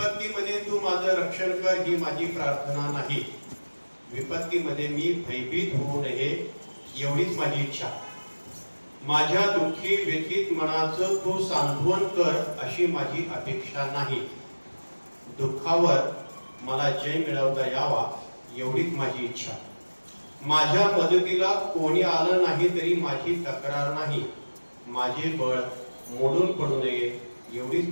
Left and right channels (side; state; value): both; inverted; correlation -1.00